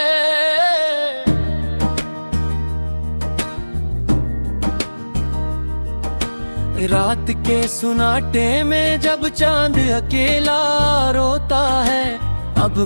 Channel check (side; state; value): both; inverted; correlation -1.00